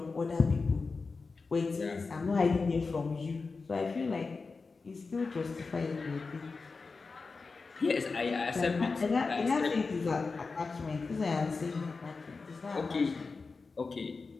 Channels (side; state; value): right; quieter; 4.3 dB